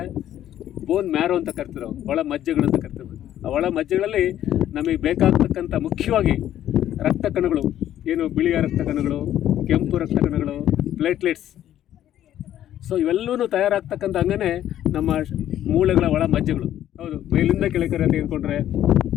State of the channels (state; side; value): quieter; right; 11.8 dB